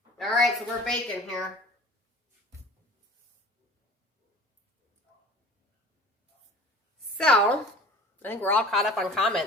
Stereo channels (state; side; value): normal; both; correlation 0.43